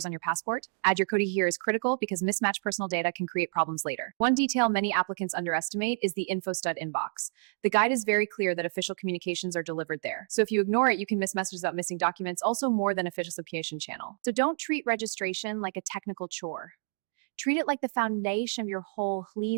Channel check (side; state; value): left; silent; digital silence